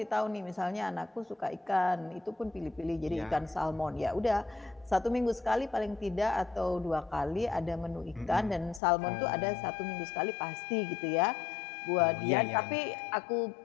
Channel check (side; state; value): right; drops out; at 8.8 s